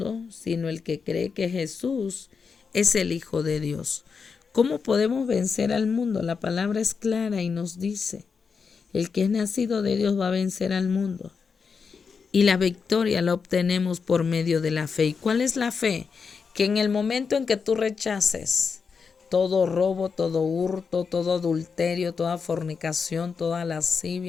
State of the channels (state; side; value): quieter; right; 5.5 dB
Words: Sino el que cree que Jesús es el Hijo de Dios. ¿Cómo podemos vencer al mundo? La palabra es clara y nos dice, el que es nacido de Dios va a vencer al mundo. Y la victoria la obtenemos por medio de la fe. ¿Y cuál es la fe? Que en el momento en que tú rechaces todo robo, todo hurto, todo adulterio, toda fornicación, toda